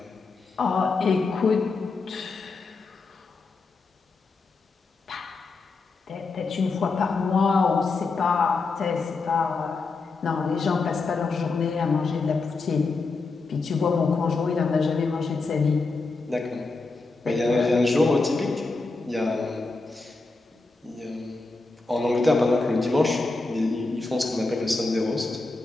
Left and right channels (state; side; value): quieter; right; 3.8 dB